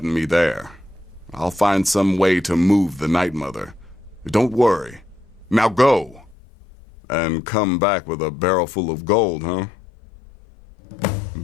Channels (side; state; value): right; drops out; at 6.4 s